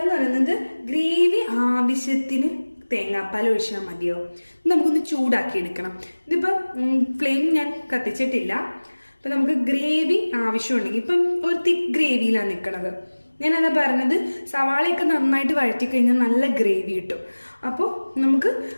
എന്ന് പറയുന്നത് ഗ്രേവി ആവശ്യത്തിന് തേങ്ങാപ്പാൽ ഒഴിച്ചാൽ മതിയോ. നമുക്കൊന്ന് ചൂടാക്കി എടുക്കണം. ഇതിപ്പം ഫ്ലെയിം ഞാൻ കത്തിച്ചിട്ടില്ല. അപ്പം നമുക്ക് ഗ്രേവി ആവശ്യമുണ്ടെങ്കിൽ, ഇപ്പം ഒരു തിക്ക് ഗ്രേവിയിലാണ് നിൽക്കണത്. ഞാനതാ പറഞ്ഞത്, സവാളയൊക്കെ നന്നായിട്ട് വഴറ്റി കഴിഞ്ഞാൽ നല്ല ഗ്രേവി കിട്ടും. അപ്പോൾ നമുക്ക്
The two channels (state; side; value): inverted; both; correlation -1.00